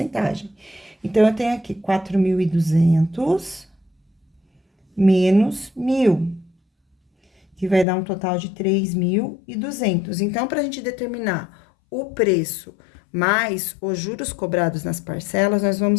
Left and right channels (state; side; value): drops out; right; at 7.9 s